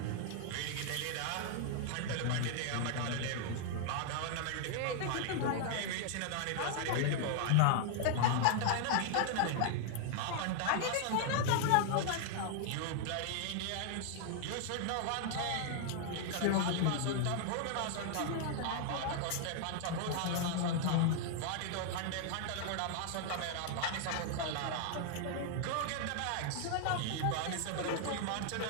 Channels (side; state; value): both; different; correlation 0.00